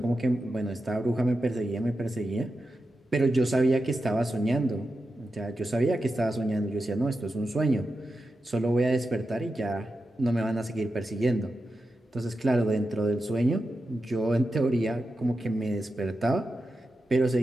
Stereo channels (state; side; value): normal; both; correlation 0.90